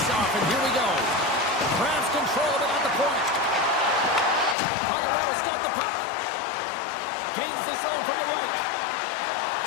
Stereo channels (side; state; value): right; drops out; at 4.5 s